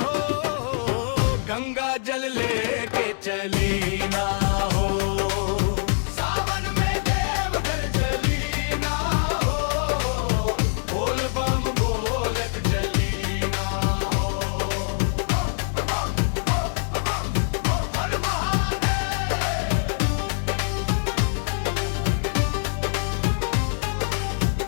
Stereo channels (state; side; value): silent; right; 61 dB below the other